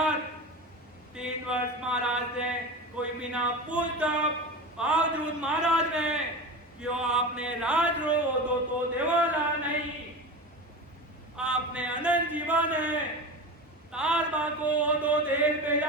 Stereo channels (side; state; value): both; normal; correlation 0.27